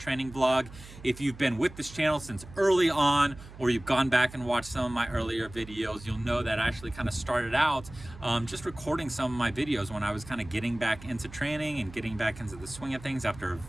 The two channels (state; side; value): noise; right; hum, 17 dB below the sound